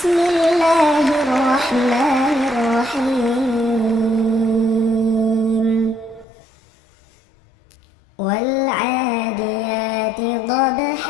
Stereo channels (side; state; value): right; drops out; at 6.2 s